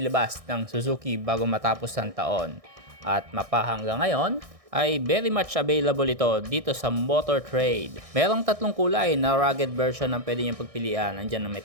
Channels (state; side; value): late; left; 1.6 ms